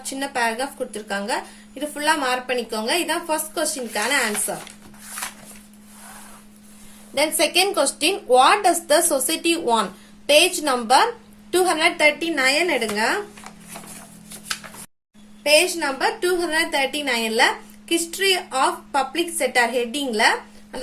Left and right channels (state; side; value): identical; both; correlation 1.00